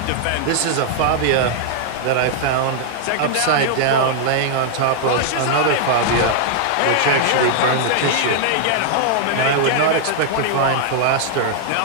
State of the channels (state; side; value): different; both; correlation -0.01